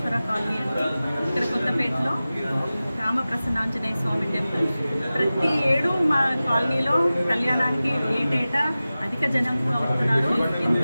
కాలనీ అండి. ఇక్కడ కొత్తపేటలో రామప్రసన్నాంజనేయ స్వామి టెంపుల్. ప్రతి ఏడు మా కాలనీలో కళ్యాణానికి ఏటేటా అధిక జనం అవుతున్నారు.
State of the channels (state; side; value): inverted; both; correlation -0.96